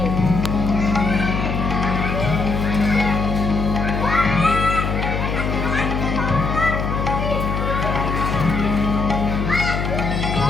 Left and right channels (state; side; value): noise; left; hum, 1 dB below the sound